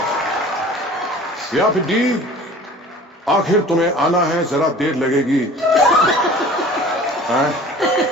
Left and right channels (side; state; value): both; normal; correlation 0.44